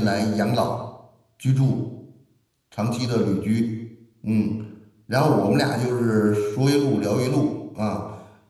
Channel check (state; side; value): identical; both; correlation 1.00